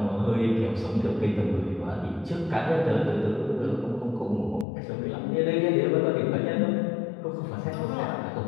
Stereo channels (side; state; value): right; drops out; at 4.7 s